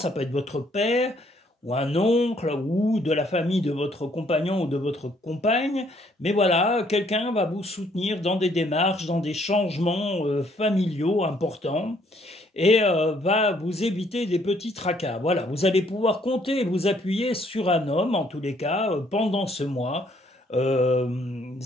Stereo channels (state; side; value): normal; both; correlation 0.66